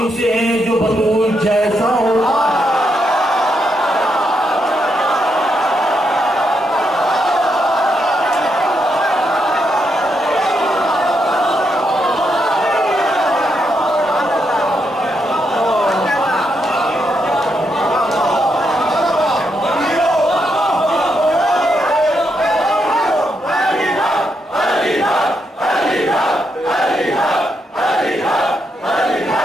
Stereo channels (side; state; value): both; normal; correlation 0.80